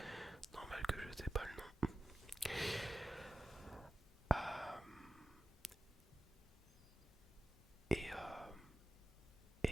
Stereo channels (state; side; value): normal; both; correlation 0.93